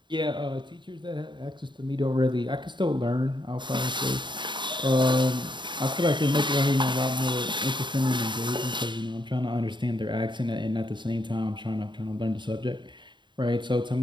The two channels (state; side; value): late; left; 0.23 ms